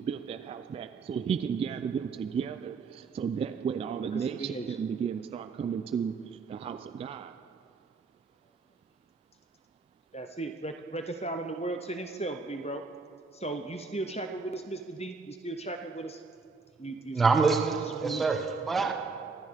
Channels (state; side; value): quieter; left; 4.7 dB